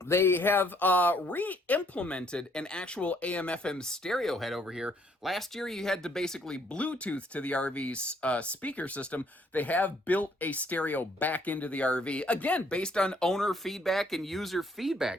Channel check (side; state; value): both; normal; correlation 0.66